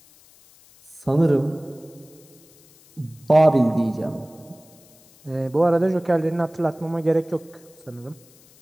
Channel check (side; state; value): left; noise; hiss, 27 dB below the sound